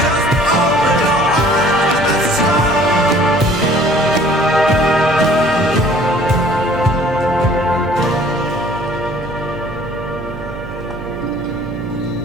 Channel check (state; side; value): noise; right; hum, 11 dB below the sound